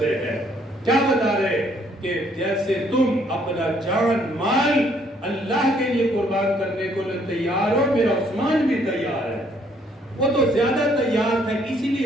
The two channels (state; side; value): normal; both; correlation 0.66